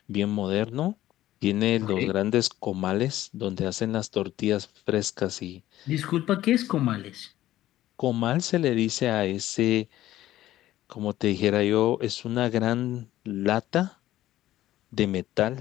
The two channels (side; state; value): right; quieter; 14.2 dB